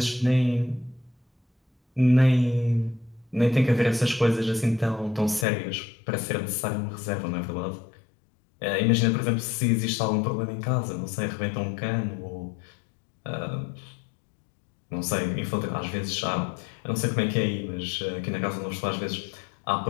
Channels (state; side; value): drops out; right; at 5.5 s